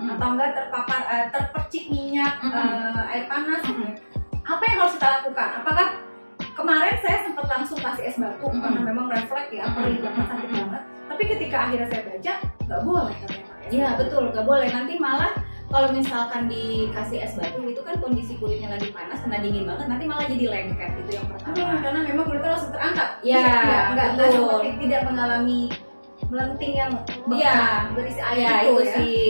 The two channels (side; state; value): both; inverted; correlation -1.00